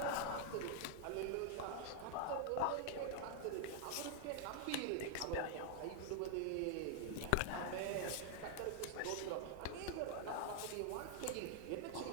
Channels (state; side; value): different; both; correlation -0.01